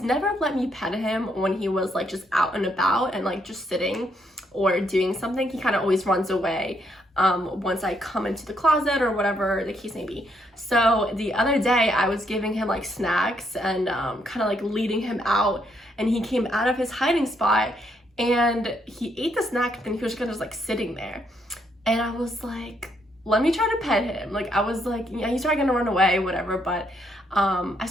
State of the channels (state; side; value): normal; both; correlation 0.74